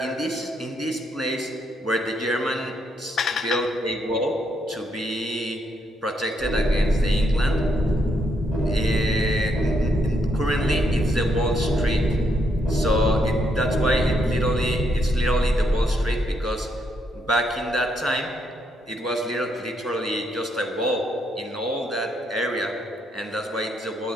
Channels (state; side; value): normal; both; correlation 0.76